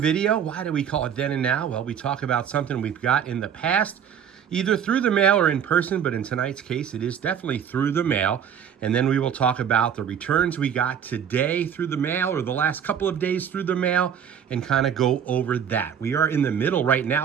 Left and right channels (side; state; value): left; quieter; 8.3 dB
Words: Why do we call it Then and Now? Well, we talk about something we've got in the past, either through the mail or in person, but in tonight's case, it is definitely through the mail. And then we will talk about the returns we got today through the mail or the last couple of days through the mail and kind of go over that. We are in the middle right